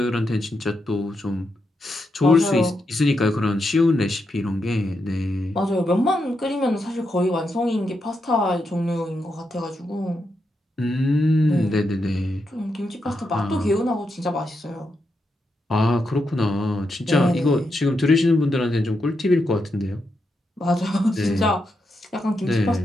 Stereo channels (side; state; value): both; normal; correlation 0.84